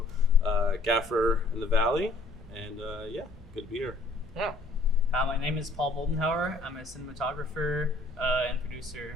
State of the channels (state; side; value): quieter; right; 3.1 dB